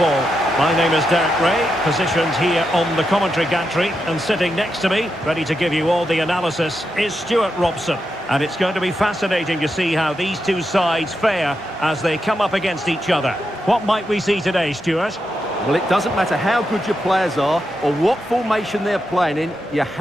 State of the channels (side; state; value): both; normal; correlation 0.86